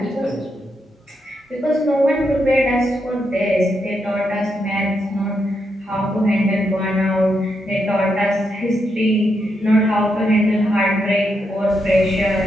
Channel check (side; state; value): both; normal; correlation 0.82